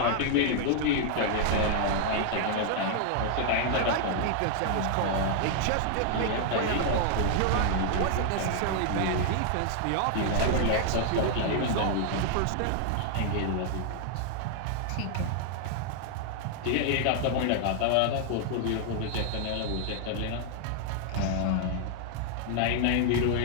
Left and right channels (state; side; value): different; both; correlation 0.00